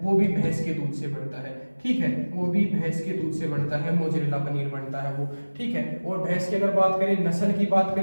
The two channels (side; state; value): both; inverted; correlation -1.00